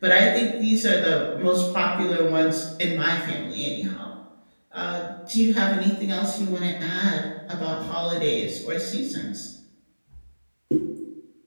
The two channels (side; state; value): both; inverted; correlation -1.00